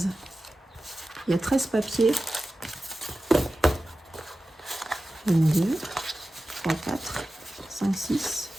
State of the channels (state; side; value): normal; both; correlation 0.95